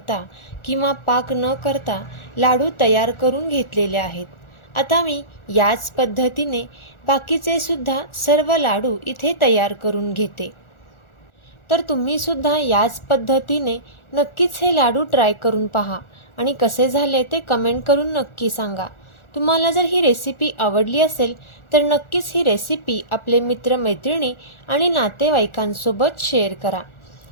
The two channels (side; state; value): right; late; 1.4 ms